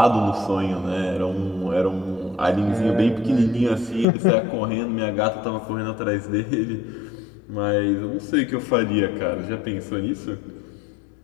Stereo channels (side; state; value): right; drops out; at 4.0 s